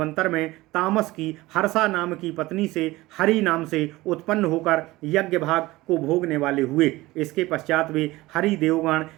में तामस की हर्षा नाम की पत्नी से हरि नाम से उत्पन्न होकर यज्ञ भाग को भोगने वाले हुए। इसके पश्चात वे हरि देवगण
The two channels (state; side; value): quieter; left; 19.3 dB